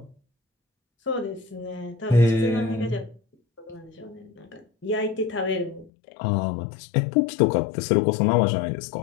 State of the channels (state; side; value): drops out; right; at 5.9 s